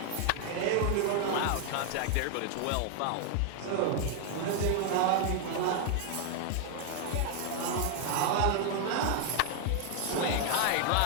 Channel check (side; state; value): both; different; correlation 0.00